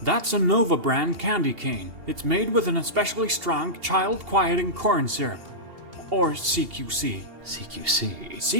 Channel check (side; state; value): left; late; 2.8 ms